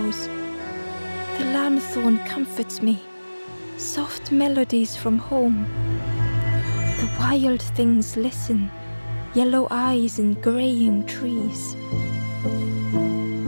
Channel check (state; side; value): inverted; both; correlation -1.00